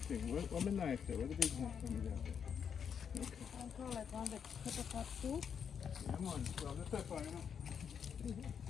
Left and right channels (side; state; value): right; quieter; 7.4 dB